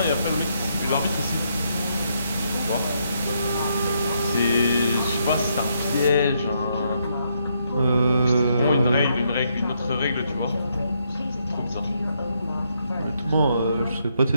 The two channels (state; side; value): inverted; both; correlation -0.76